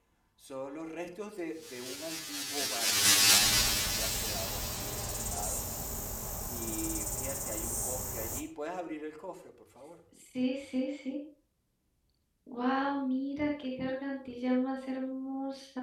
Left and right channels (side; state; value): both; identical; correlation 1.00